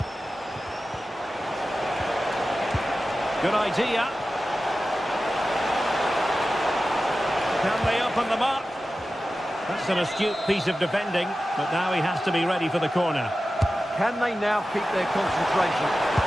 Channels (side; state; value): both; normal; correlation 0.94